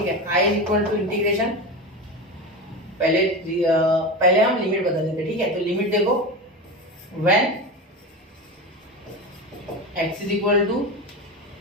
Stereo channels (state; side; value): normal; both; correlation 0.24